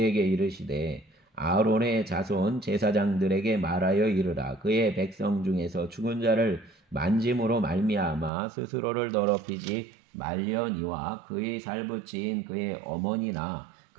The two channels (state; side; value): drops out; left; at 8.3 s